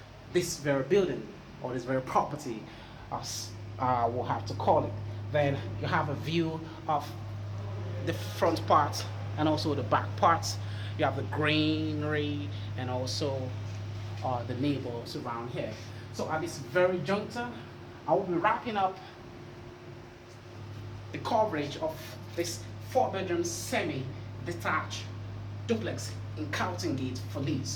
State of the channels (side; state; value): both; identical; correlation 1.00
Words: this very building, or this very property, as we'll have to call it. Then you have a view of the front part and also the back parts. You have the greenery and also the neighbors around here. So at this very juncture, I will be wrapping up the coverage of this 4-bedroom semi-detached duplex in Carlton Gate for